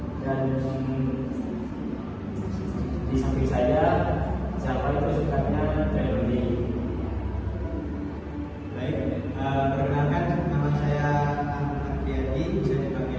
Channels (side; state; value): both; identical; correlation 1.00